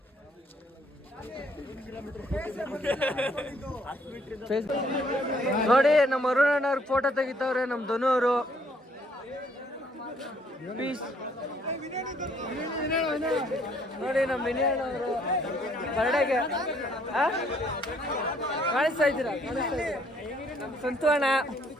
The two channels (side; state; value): both; normal; correlation 0.65